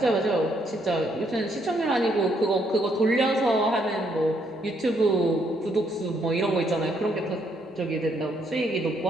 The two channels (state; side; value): normal; both; correlation 0.72